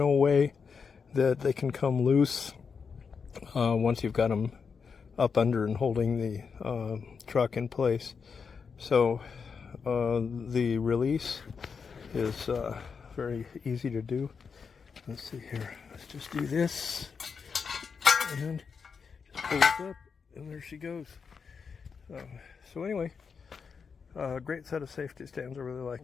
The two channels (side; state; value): right; quieter; 5.8 dB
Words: way that they can come loose once you've got them up under and holding the truck in place. So the release is very easy to do. Let's see here. Let's just do this and just pull it up, and there she goes. So anyway, great set of safety stands. I really